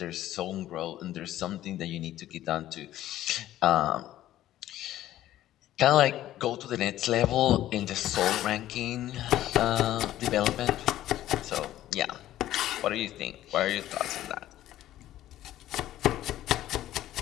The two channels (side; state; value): right; quieter; 13.6 dB